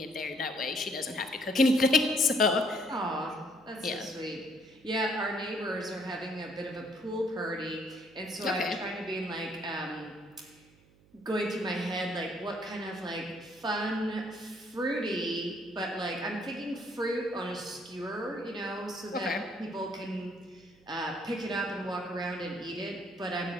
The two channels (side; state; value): right; noise; hum, 28 dB below the sound